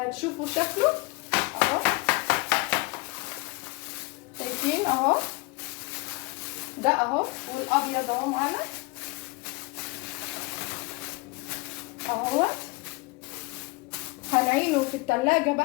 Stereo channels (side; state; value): right; quieter; 26.5 dB